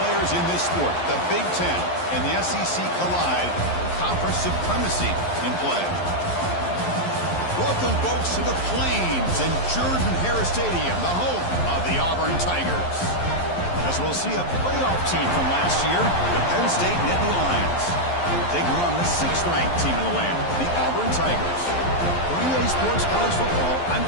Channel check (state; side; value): late; right; 11 ms